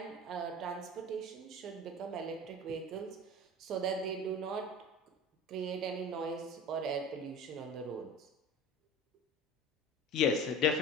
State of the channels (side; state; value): both; normal; correlation 0.36